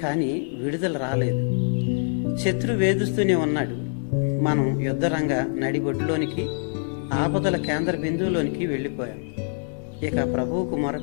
కానీ విడుదల రాలేదు. శత్రు వేధిస్తూనే ఉన్నాడు. మనం యుద్ధరంగ నడిబొడ్డులోనికి, ఆపదల కేంద్ర బిందువులోనికి వెళ్ళిపోయాం. ఇక ప్రభువుకు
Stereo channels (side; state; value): right; silent; digital silence